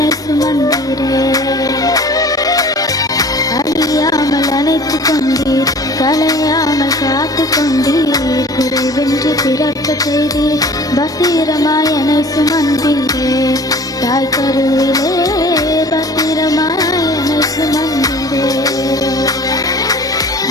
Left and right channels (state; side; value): normal; both; correlation 0.46